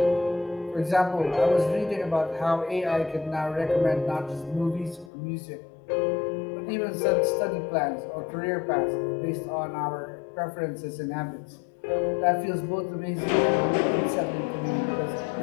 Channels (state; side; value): drops out; right; at 5.1 s